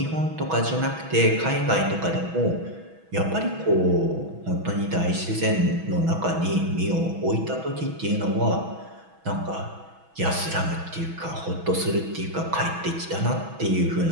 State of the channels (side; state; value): left; late; 6.1 ms